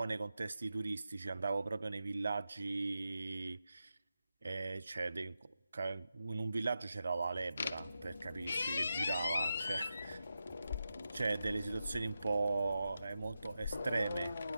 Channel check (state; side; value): inverted; both; correlation -0.90